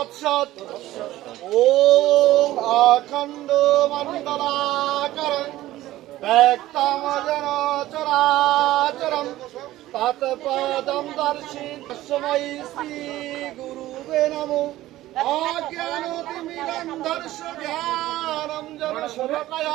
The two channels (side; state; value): left; quieter; 15.5 dB